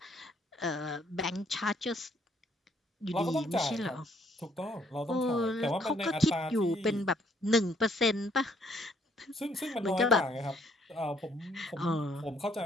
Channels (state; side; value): normal; both; correlation 0.66